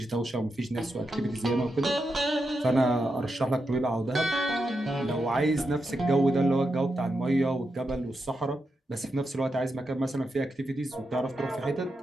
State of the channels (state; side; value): normal; both; correlation 0.87